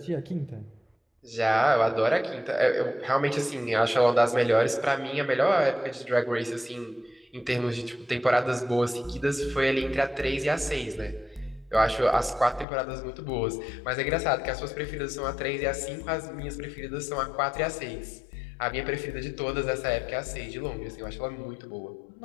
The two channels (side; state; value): right; drops out; at 12.7 s